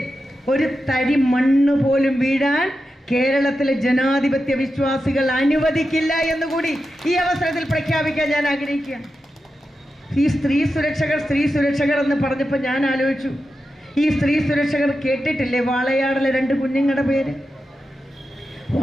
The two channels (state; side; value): normal; both; correlation 0.90